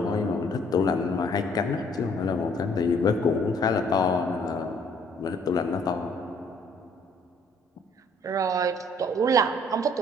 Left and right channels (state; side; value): normal; both; correlation 0.61